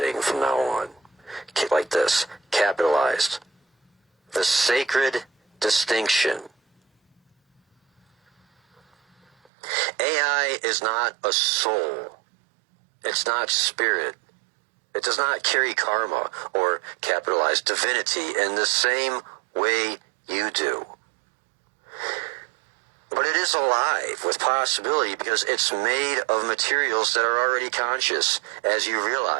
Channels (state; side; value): drops out; left; at 9.5 s